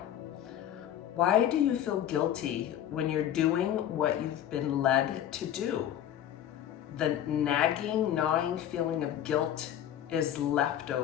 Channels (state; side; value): quieter; right; 10.8 dB